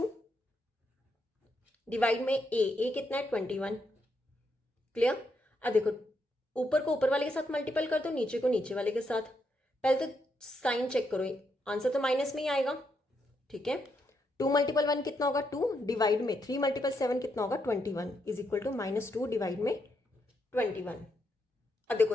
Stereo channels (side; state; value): both; normal; correlation 0.79